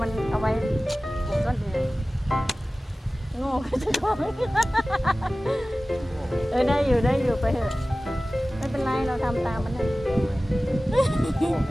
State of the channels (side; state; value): both; normal; correlation 0.97